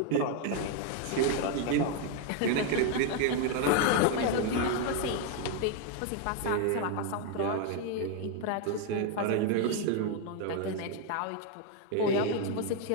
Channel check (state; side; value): different; both; correlation 0.01